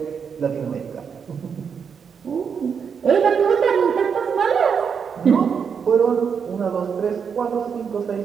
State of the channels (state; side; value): quieter; left; 6.6 dB